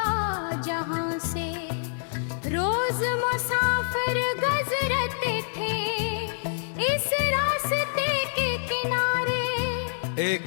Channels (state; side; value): silent; right; digital silence